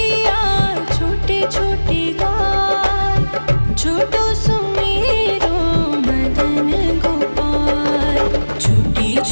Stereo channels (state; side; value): inverted; both; correlation -1.00